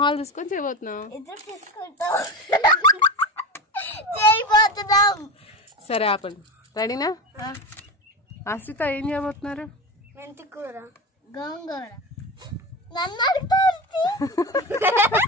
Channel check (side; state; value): both; normal; correlation 0.24